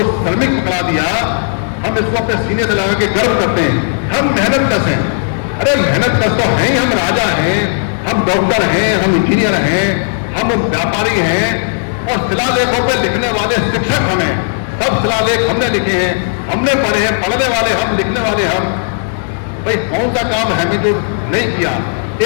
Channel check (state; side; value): silent; right; digital silence